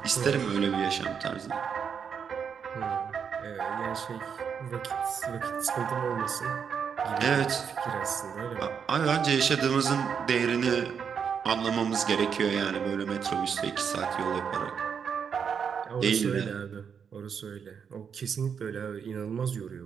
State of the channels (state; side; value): quieter; left; 7.0 dB